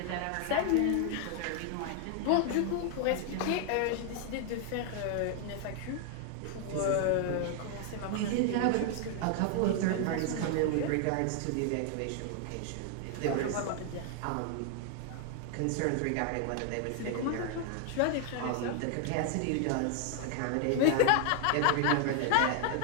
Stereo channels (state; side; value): different; both; correlation 0.00